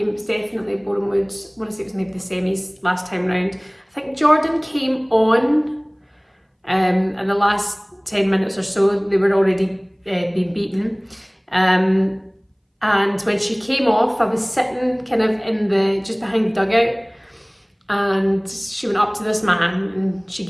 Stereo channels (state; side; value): identical; both; correlation 1.00